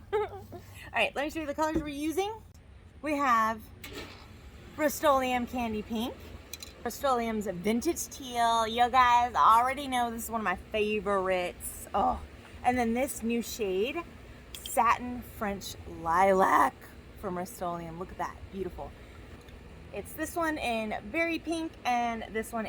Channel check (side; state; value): both; identical; correlation 1.00